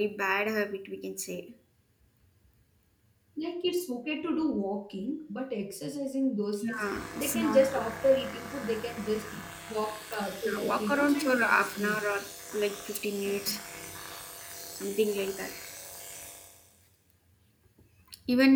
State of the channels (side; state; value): both; identical; correlation 1.00